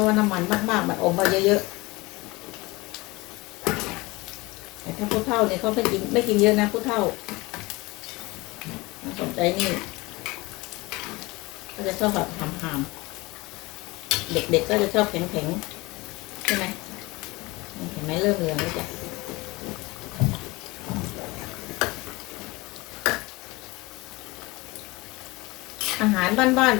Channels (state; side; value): quieter; right; 22.9 dB